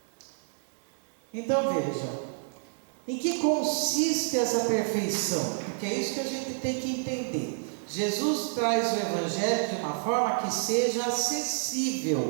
Então veja, em que consiste essa perfeição? Porque é isso que a gente tem que entender. Jesus traz o Evangelho de uma forma que seja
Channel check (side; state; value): left; silent; digital silence